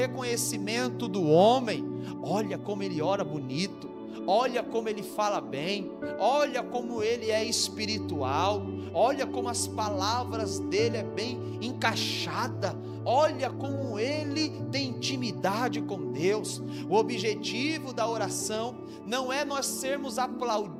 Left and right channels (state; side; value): identical; both; correlation 1.00